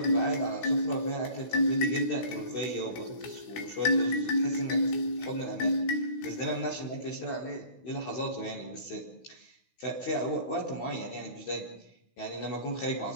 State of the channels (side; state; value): right; late; 16 ms